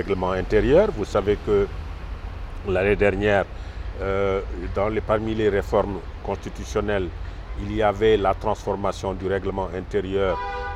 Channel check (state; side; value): identical; both; correlation 1.00